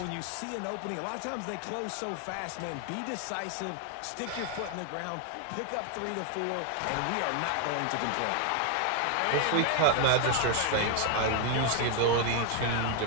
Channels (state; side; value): different; both; correlation 0.01